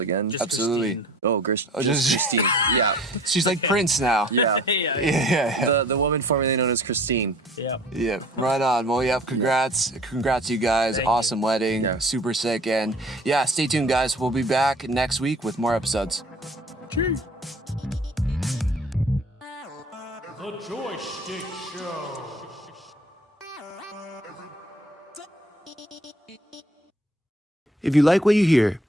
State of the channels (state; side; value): normal; both; correlation 0.49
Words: again. Just Absolutely. Christine. Oh, just Christine. Yeah. She's like Prince now. Yeah. Yeah. The woman formerly known as Christine. Yeah. Yeah, right on. Well, yeah, congrats you guys. Thank Awesome wedding. Yeah. Super sick. And yeah, stay tuned, guys. We'll be back next week with more episodes. Cheers. The Joystick Show. If you like what you hear,